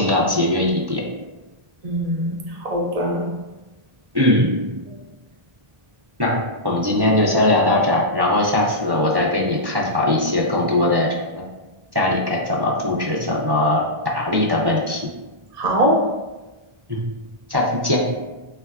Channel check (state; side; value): late; left; 1.1 ms